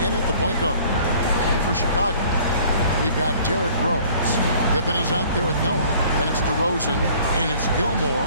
in at the point guard. And for Chicago, we've got Derrick Rose. Pippen is out there with Noah, and it's DeRozan, and it's Gilmore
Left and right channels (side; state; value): both; inverted; correlation -0.53